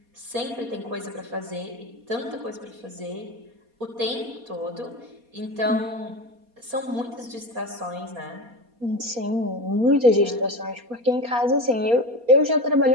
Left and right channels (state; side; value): late; left; 4.2 ms